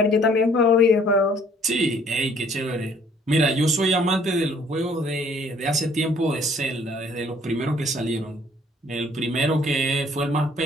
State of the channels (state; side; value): normal; both; correlation 0.59